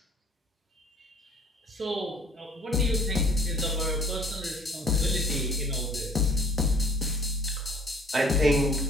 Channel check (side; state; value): both; normal; correlation 0.55